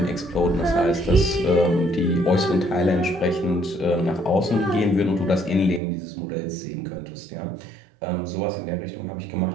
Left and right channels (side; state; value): left; drops out; at 5.8 s